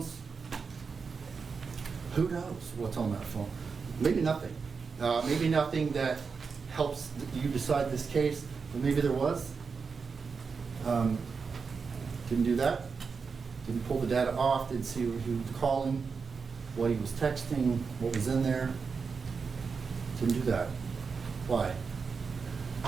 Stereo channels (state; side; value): quieter; left; 5.3 dB